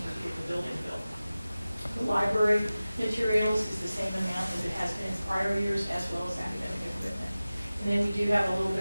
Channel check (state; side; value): inverted; both; correlation -0.97